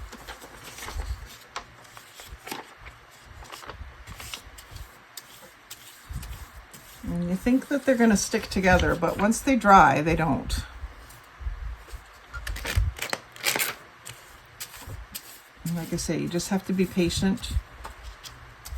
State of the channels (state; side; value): identical; both; correlation 1.00